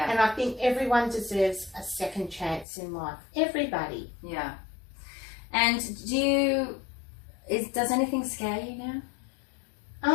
And I think everyone deserves a second chance in life. Everybody. Yeah. And does anything scare you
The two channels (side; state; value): right; drops out; at 2.7 s